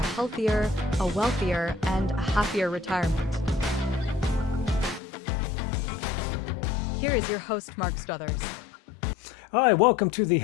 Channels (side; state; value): right; drops out; at 5.0 s